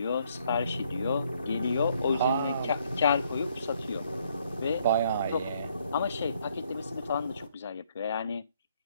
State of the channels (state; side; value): inverted; both; correlation -0.69